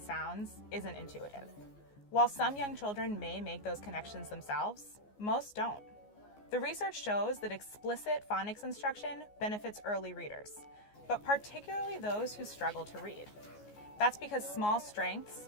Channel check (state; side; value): late; right; 14 ms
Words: isn't intuitive. While some young children may make those connections themselves, most don't. The research shows that explicit phonics instruction benefits early readers, but particularly those who struggle to read. That's because small strengths